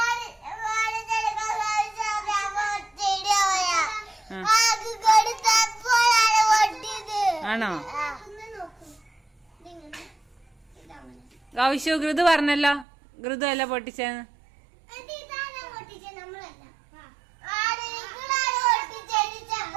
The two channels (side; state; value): left; drops out; at 12.9 s